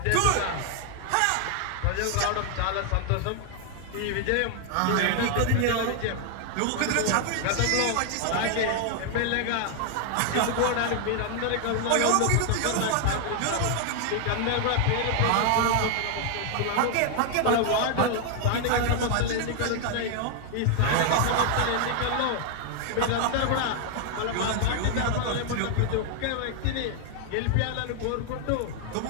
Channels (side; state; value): both; different; correlation 0.00